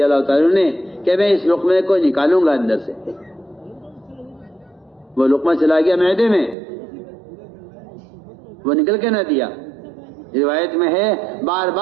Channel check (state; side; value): drops out; left; at 6.6 s